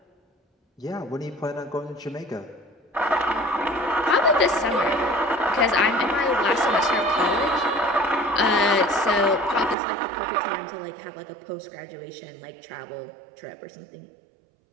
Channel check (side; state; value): left; drops out; at 9.8 s